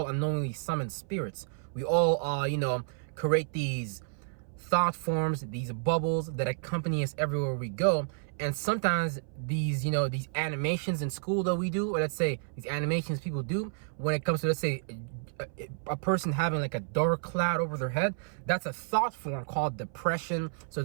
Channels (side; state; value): left; silent; 57 dB below the other